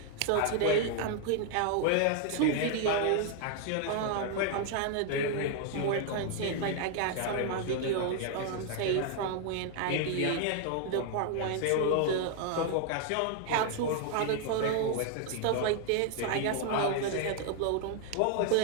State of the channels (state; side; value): different; both; correlation 0.00